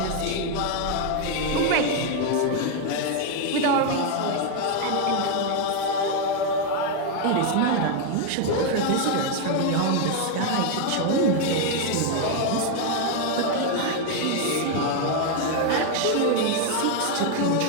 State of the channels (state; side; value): different; both; correlation 0.01